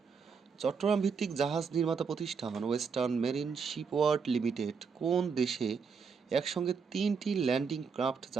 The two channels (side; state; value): left; quieter; 5.7 dB